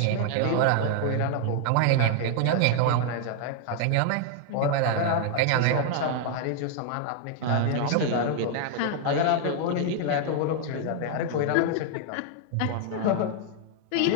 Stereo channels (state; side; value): different; both; correlation 0.00